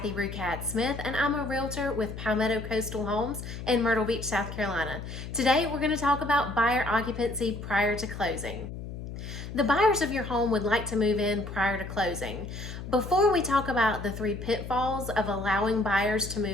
Rucat Smith and I'm a realtor with Palmetto Coastal Homes in Myrtle Beach, South Carolina. Today we're going to talk about buyer occupancy prior to closing. The buyers of your home would like to move in prior to closing. Before we talk about the 3 pitfalls of allowing buyers to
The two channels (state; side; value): noise; left; hum, 9 dB below the sound